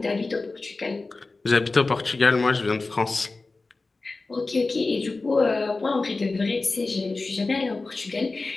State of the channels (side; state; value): right; quieter; 3.6 dB